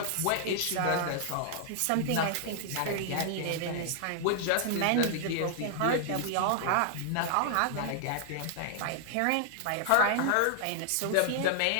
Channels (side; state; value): both; different; correlation 0.00